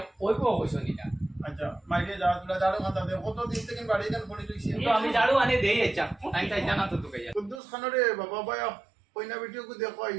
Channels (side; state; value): left; drops out; at 7.6 s